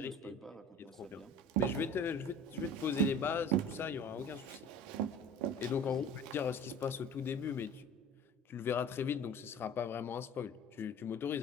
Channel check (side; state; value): both; normal; correlation 0.43